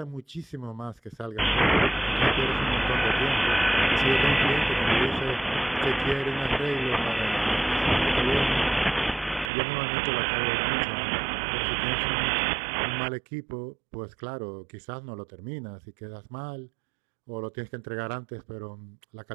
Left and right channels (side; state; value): left; drops out; at 9.5 s